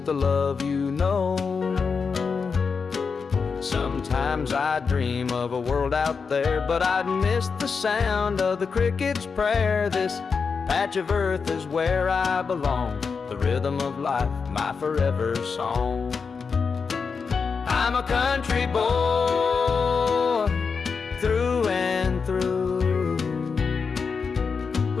love you know. Sometimes Sometimes I dream of a world out there, but I'd miss the sound of the cricket's prayer. This patch of earth is where I belong, the rhythm of life, my forever song. I'm a country boy, through and through,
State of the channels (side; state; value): right; quieter; 5.4 dB